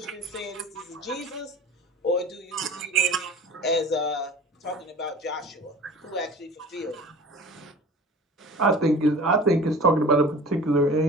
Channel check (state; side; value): normal; both; correlation 0.40